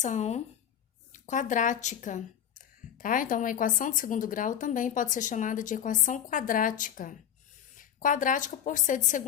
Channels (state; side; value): quieter; right; 9.6 dB